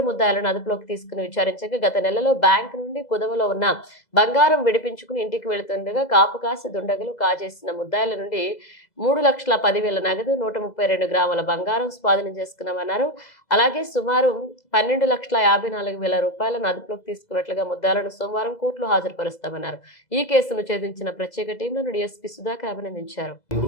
ముద్దాయిలను అదుపులోకి తీసుకుని విచారించగా గత నెలలో బ్యాంకు నుండి కుదవలో ఉన్న బంగారం విడిపించుకుని ఇంటికి వెళుతుండగా కాపుకాసి దుండగులు కాజేసిన ముద్దాయిల నుండి 3,10,000 నగదు, 132 గ్రాముల బంగారం స్వాధీనం చేసుకున్నామన్నారు. అలాగే సుమారు 12,54,000 రూపాయలను అదుపులోకి తీసుకున్నట్లుగా ముద్దాయిలను సోమవారం కోర్టులో హాజరుపరుస్తామన్నారు. ఈ కేసును ఛేదించిన ప్రత్యేక టీంలను డీఎస్పీ సుధాకర్ అభినందించారు.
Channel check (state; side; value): late; right; 2.0 ms